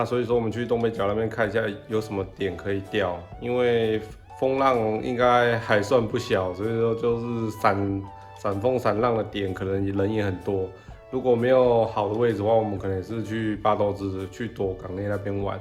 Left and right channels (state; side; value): identical; both; correlation 1.00